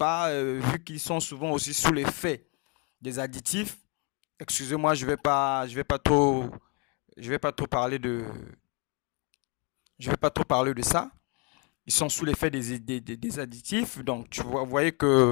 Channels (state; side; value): quieter; right; 32.6 dB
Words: vu qu'ils sont souvent aussi sous l'effet des additifs. Excusez-moi, je vais pas trop parler je vais pas trop parler de ça. Ils sont sous l'effet des additifs. Donc, vous voyez